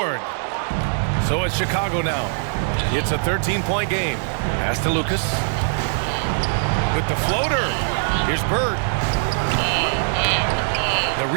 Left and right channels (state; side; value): silent; left; 65 dB below the other